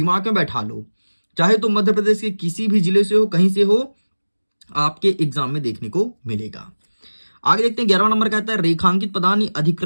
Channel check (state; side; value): inverted; both; correlation -1.00